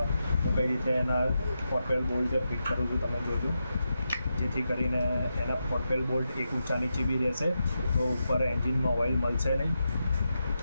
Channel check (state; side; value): inverted; both; correlation -0.87